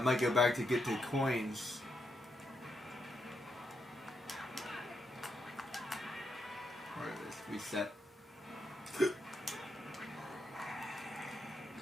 might go back to get the coins. Alright, let's reset.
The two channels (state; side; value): normal; both; correlation 0.82